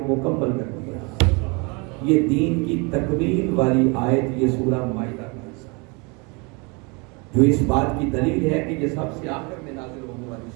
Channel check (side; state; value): left; quieter; 30.2 dB